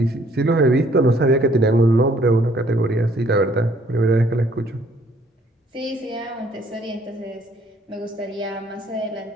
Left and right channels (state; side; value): normal; both; correlation 0.62